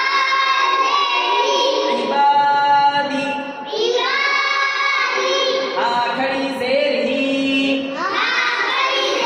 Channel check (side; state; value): both; identical; correlation 1.00